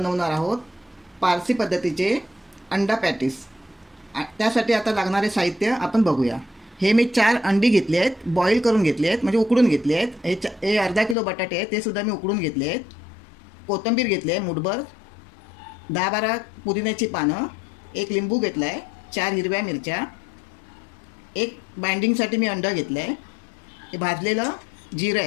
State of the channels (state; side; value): drops out; right; at 11.2 s